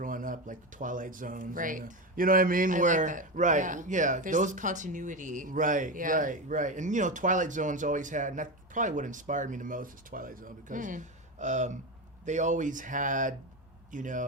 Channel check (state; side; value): normal; both; correlation 0.17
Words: up, like the Twilight Zones. Right. You know what I mean? Where, like that. Right, yeah. There's those continuity. Right, right. And, Twilight Zones always had, and that's probably what inspired me the most is Twilight Zone, because they always had,